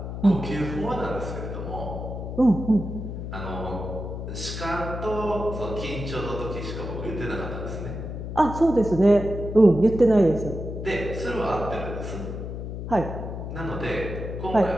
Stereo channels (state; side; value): noise; left; hum, 7 dB below the sound